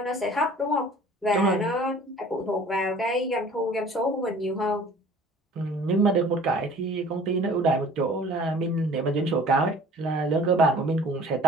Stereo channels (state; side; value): normal; both; correlation 0.48